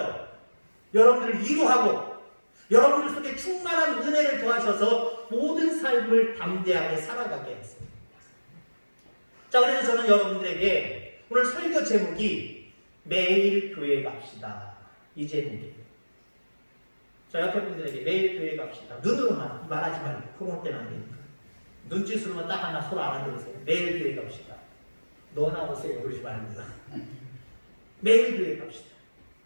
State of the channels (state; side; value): inverted; both; correlation -1.00